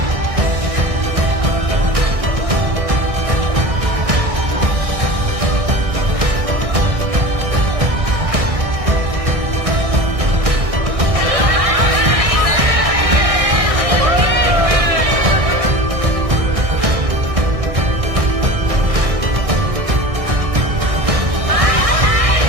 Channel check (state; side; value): late; left; 1.6 ms